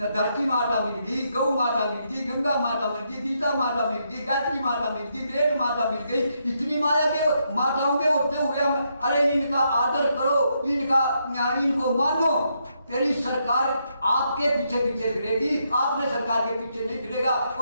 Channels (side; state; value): both; inverted; correlation -0.78